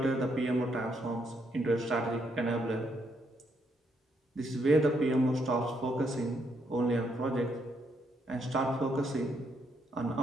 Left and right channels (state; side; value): normal; both; correlation 0.75